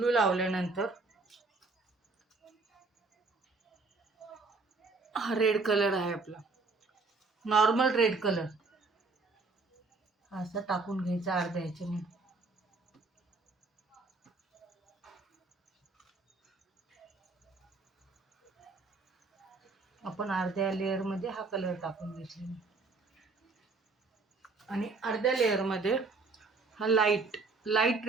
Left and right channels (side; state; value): left; quieter; 3.9 dB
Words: लावल्यानंतर हा रेड कलर आहे आपला, नॉर्मल रेड कलर, असं टाकून घ्यायचा अर्ध्या ह्याच्याने. आपण अर्ध्या लेअरमध्ये हा कलर टाकून घेतलेला आणि अर्ध्या लेअरमध्ये हा लाईट